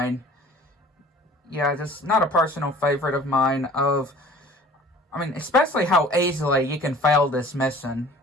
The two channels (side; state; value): both; normal; correlation 0.48